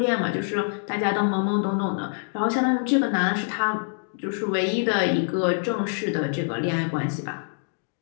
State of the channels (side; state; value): right; silent; digital silence